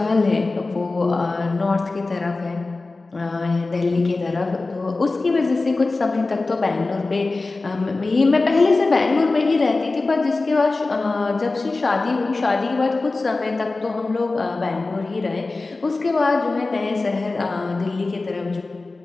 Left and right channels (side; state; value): right; quieter; 3.4 dB